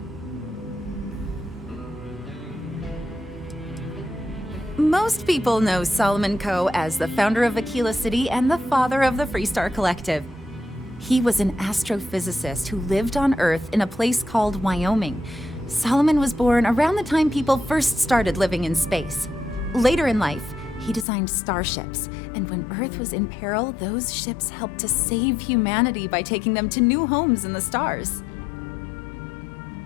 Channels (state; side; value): drops out; right; at 21.1 s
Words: Most people know Solomon Coe as the founder of Aquila City and the father of the Freestar Collective. He was an astrophysicist who lived on Earth in a place called Wyoming. Solomon was born around the time people first started living in space. Later in life, he designed starships, and when Earth was in peril, those ships helped to save humanity by taking them to new homes in the stars.